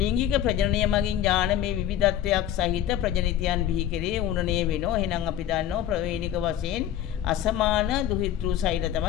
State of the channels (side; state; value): right; quieter; 11.2 dB